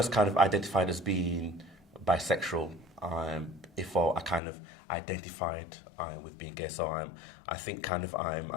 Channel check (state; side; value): drops out; right; at 4.4 s